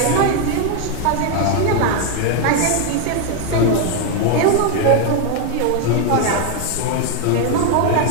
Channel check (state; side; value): different; both; correlation 0.01